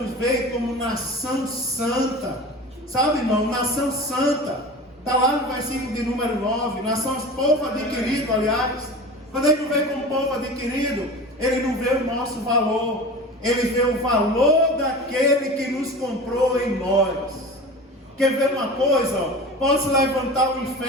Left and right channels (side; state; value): both; normal; correlation 0.34